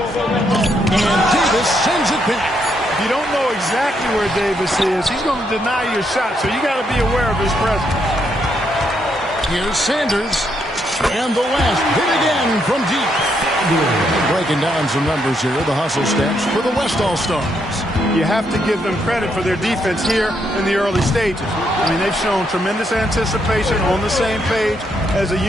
And Davis sends it back. If you don't know exactly where Davis is, he's going to deny your shot, so you got to be aware of his presence. Here's Sanders. And the West hit again from deep. Breaking down some numbers here, the hustle stats for the West All-Stars. You have to give them credit for their defense here in the early stages. I mean, they've shown tremendous anticipation, on the same page as a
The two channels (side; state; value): both; normal; correlation 0.77